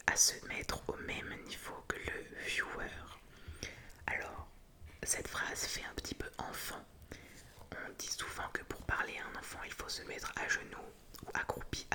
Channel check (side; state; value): both; identical; correlation 1.00